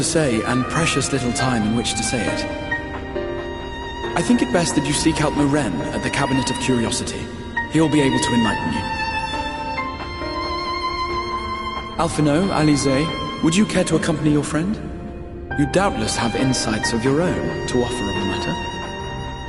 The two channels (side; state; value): both; identical; correlation 1.00